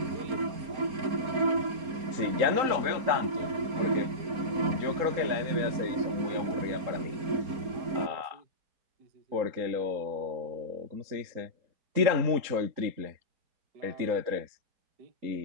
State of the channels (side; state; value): left; late; 4.3 ms